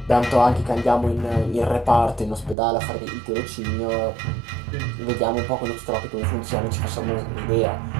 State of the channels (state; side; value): drops out; left; at 2.6 s